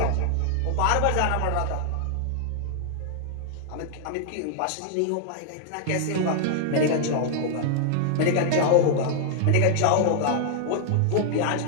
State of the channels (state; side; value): different; both; correlation -0.01